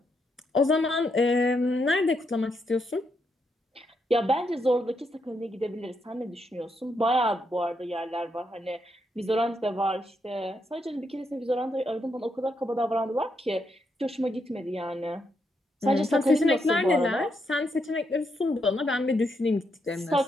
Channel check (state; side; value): normal; both; correlation 0.79